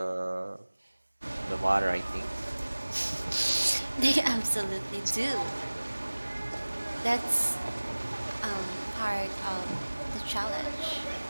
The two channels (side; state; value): both; inverted; correlation -1.00